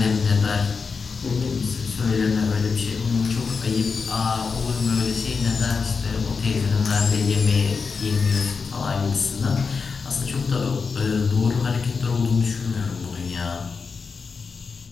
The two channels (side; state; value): right; quieter; 5.1 dB